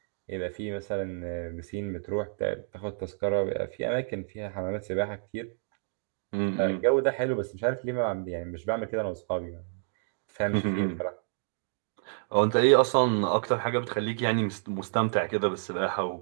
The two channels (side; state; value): left; silent; digital silence